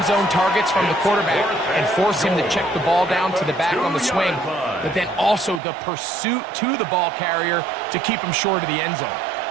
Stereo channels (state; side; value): drops out; left; at 5.6 s